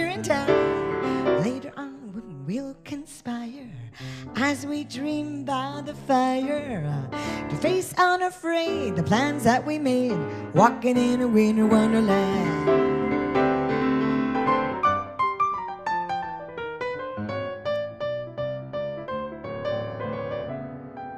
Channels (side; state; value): both; identical; correlation 1.00